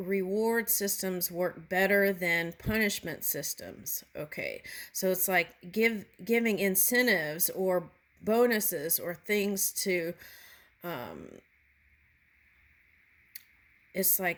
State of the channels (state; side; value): identical; both; correlation 1.00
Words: systems work better than punishment systems. Okay. So it's like giving incentives or bonuses or things to it's